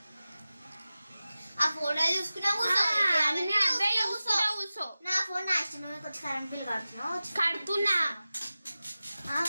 ఆ ఫోటో చూసుకున్నా కూర్చో. నా ఫోన్ నా ఇష్టం. కొంచెం కరెంట్ బిల్ కడుతున్నా.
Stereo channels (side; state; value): both; inverted; correlation -0.95